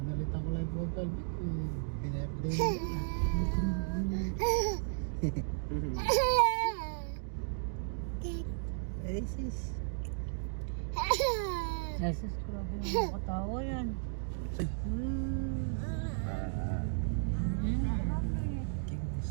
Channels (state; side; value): silent; left; digital silence